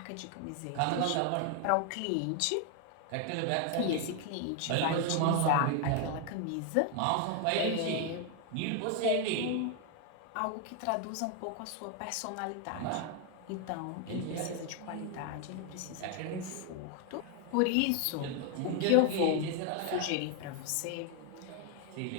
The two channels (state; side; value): different; both; correlation 0.00